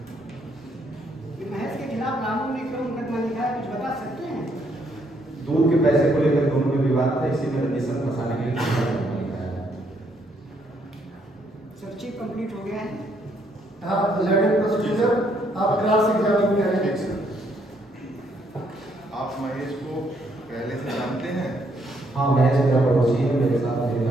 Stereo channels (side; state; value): both; normal; correlation 0.72